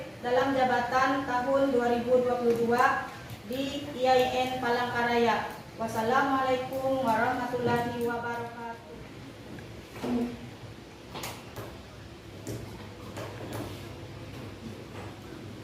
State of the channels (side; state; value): both; identical; correlation 1.00